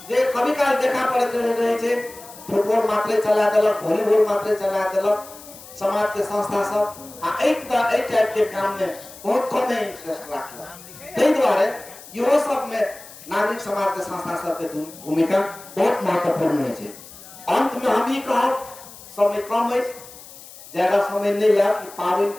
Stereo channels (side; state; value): left; noise; hiss, 18 dB below the sound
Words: जे कभी काल देखा पड़ैत रहे छै फुटबॉल मात्रे चला देलक, वॉलीबॉल मात्रे चला देलक समाज के संस्था सब आ एहि टाइप के काम में बहुत कम इंटरेस्ट राखलक। ताहि द्वारे इहो सब में नागरिक समाज के संस्था सब के भूमिका बहुत महत्वपूर्ण है। अंत में हम ई कहब, समय कम है, ज्यादा समय नहीं लिया, पावन